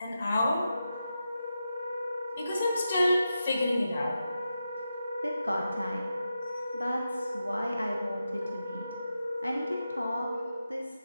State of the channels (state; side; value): inverted; both; correlation -0.89